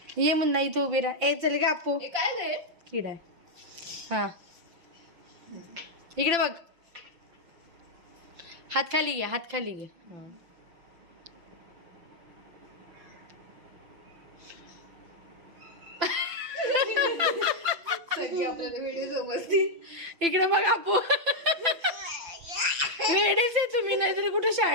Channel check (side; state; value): left; late; 5.9 ms